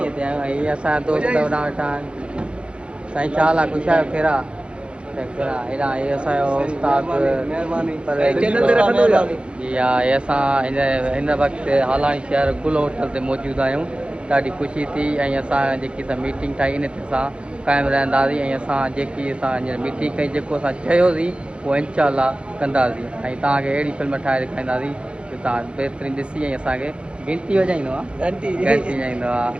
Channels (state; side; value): late; left; 0.057 ms